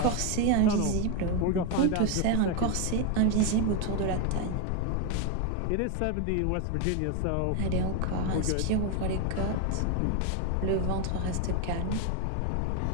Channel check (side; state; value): both; different; correlation 0.02